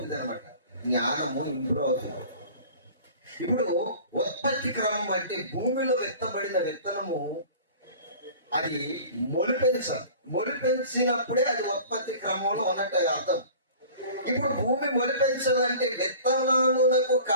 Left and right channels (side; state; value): both; inverted; correlation -0.43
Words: అనమాట. జ్ఞానము ఇంప్రూవ్ అవుతుంది. ఇప్పుడు ఉత్పత్తి క్రమం అంటే భూమిలో విత్తబడిన విత్తనము అది మొలిపించినప్పుడే అది ఉత్పత్తి క్రమంలో ఉన్నట్టు అర్థం. ఇప్పుడు భూమి మొలిపించాలంటే విత్తనములకు